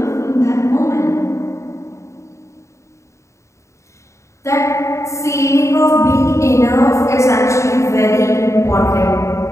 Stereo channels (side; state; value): right; late; 0.14 ms